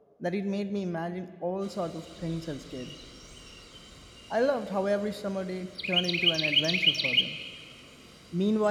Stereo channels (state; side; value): identical; both; correlation 1.00